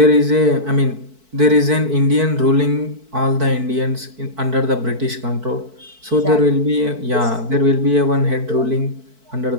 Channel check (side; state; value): left; late; 4.5 ms